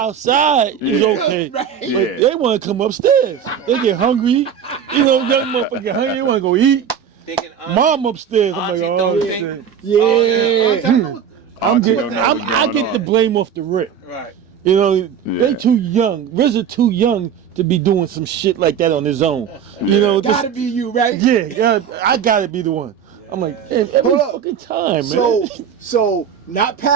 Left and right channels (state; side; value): quieter; left; 8.0 dB